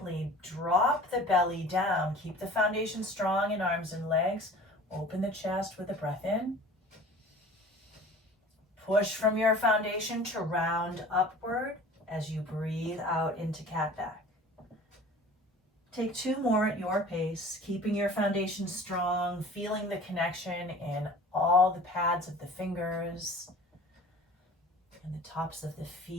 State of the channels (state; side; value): normal; both; correlation 0.44